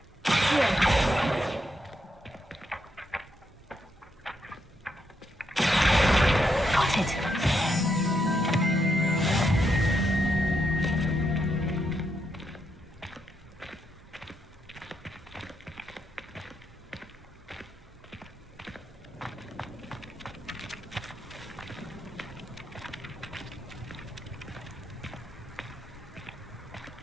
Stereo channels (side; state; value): both; normal; correlation 0.80